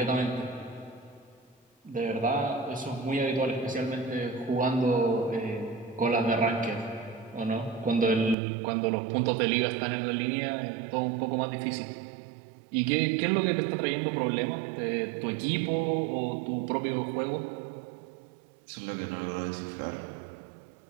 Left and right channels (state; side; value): drops out; left; at 8.3 s